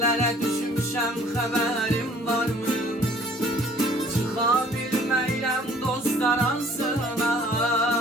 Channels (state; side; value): normal; both; correlation 0.55